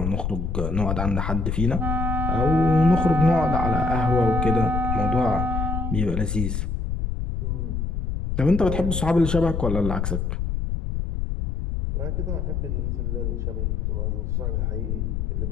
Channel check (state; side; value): noise; left; rumble, 1 dB below the sound